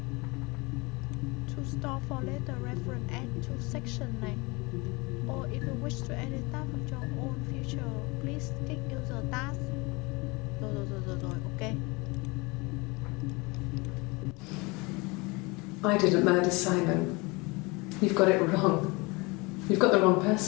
to store for later reference, add to section này. Or if you wish to edit tab of your own future, please click user task. Rồi, ok. I didn't murder Simon. You've got it wrong. You've got the wrong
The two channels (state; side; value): quieter; right; 26.0 dB